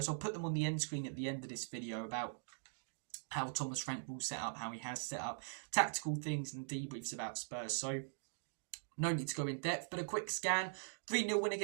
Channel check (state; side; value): silent; left; digital silence